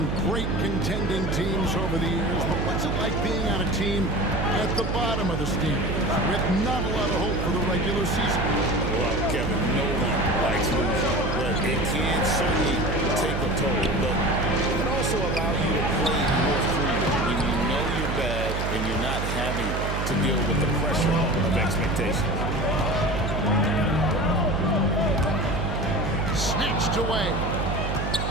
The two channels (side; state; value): right; noise; hum, 2 dB below the sound